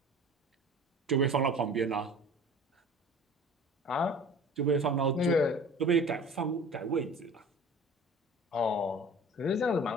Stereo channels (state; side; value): normal; both; correlation 0.43